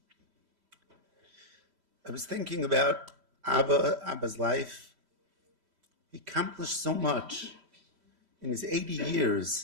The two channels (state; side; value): late; left; 3.1 ms